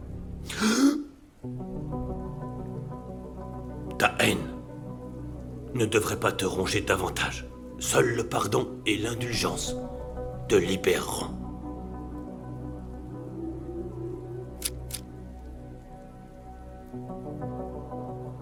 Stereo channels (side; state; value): both; identical; correlation 1.00